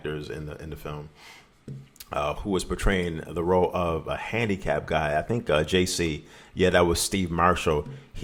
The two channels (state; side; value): identical; both; correlation 1.00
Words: in the film, who was portraying the role of a handicapped guy, I think JC, yeah, that was Steve Marshall.